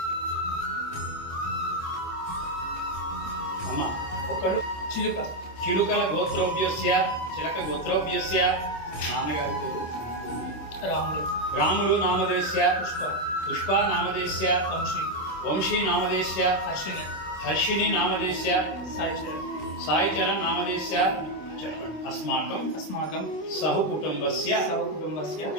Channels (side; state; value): right; late; 26 ms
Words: ఒకడు చిలుకల గోత్రోభ్యస్య చిలక గోత్రోభ్యస్య నాన్నగారి పేరు రాములు నామదేశ్య పుష్ప నామదేశ్య వంశీ నామదేశ్య హర్షిణి నామదేశ్య సాయిచరణ్ నామదేశ్య అస్మాకం సహకుటుంబస్య